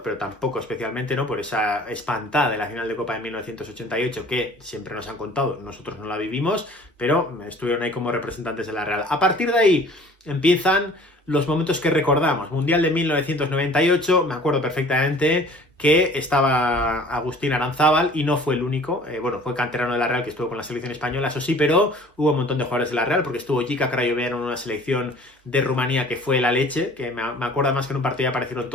pero tampoco especialmente, ¿no? Por esa espantada de la final de Copa de 1988 que siempre nos han contado, nosotros no la vivimos, pero estuvieron ahí como representantes de la Real. A partir de ahí empiezan los momentos que recordamos. Mundial de 1998, me acuerdo perfectamente que estaba Agustín Aranzábal y no fue el único, bueno, fue canterano de la Real que estuvo con la selección española, eso sí, pero hubo un montón de jugadores de la Real, porque estuvo Jica Crayoveanu en una selección de Rumanía que fue la leche, que me acuerdo más que en un partido aparecieron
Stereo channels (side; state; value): both; normal; correlation 0.49